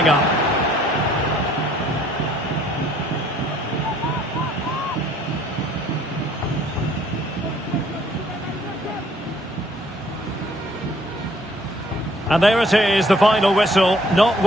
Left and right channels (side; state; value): both; normal; correlation 0.61